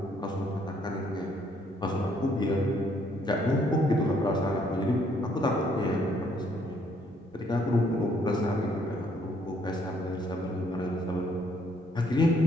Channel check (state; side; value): normal; both; correlation 0.67